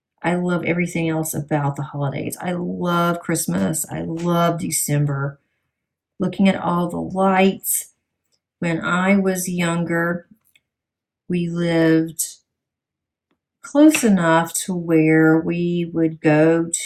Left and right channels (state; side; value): identical; both; correlation 1.00